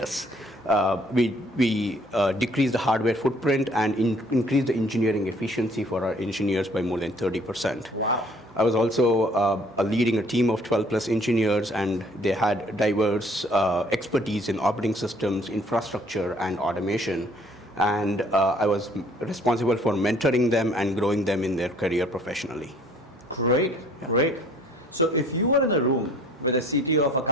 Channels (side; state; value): both; normal; correlation 0.58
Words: We decreased the hardware footprint and increased the engineering efficiency for our engineers by more than 30%. Wow. I was also leading a team of 12 plus engineers, and they had diverse expertise in operating systems, infrastructure, and automation. And I was responsible for mentoring them and growing them in their career professionally. Great, great. So if you were in a room with a CTO of a